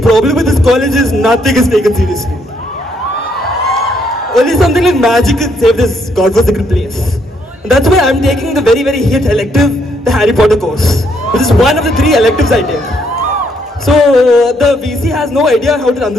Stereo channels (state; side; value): normal; both; correlation 0.72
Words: problem with this college is nothing is taken seriously. Only something like magic could save this godforsaken place. And that's why I'm taking the very, very hit elective, the Harry Potter course, which is one of the 3 electives I take. So, the VC has no idea how to run